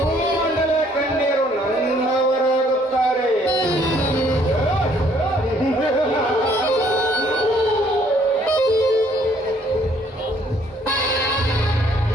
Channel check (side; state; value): both; normal; correlation 0.63